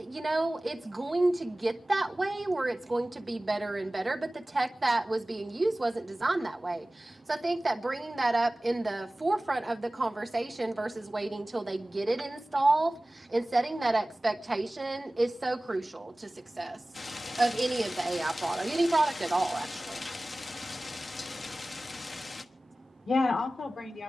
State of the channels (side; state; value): both; normal; correlation 0.98